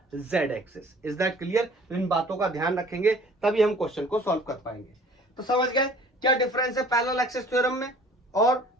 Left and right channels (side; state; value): both; normal; correlation 0.50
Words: z axis. Is that clear? तो इन बातों का ध्यान रखेंगे तभी हम क्वेश्चन को सॉल्व कर पाएंगे। तो समझ गए क्या डिफरेंस है पैरेलल एक्सिस थ्योरम में और